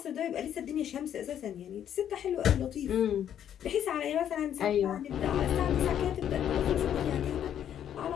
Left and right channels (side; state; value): right; quieter; 9.9 dB